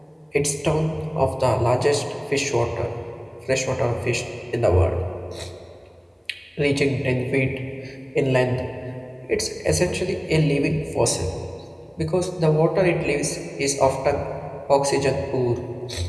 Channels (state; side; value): identical; both; correlation 1.00